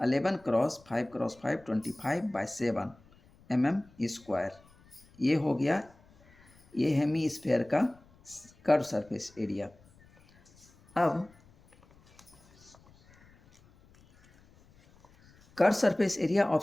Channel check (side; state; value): left; noise; rumble, 28 dB below the sound